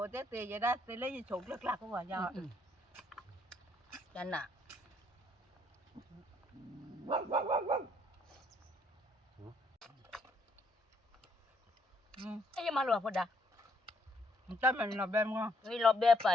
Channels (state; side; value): normal; both; correlation 0.71